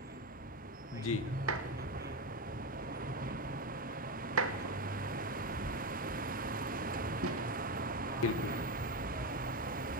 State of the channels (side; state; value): both; normal; correlation 0.12